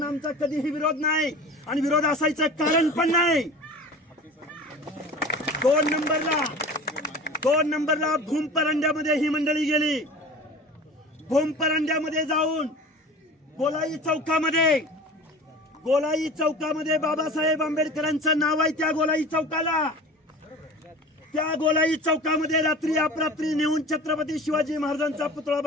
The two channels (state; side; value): normal; both; correlation 0.38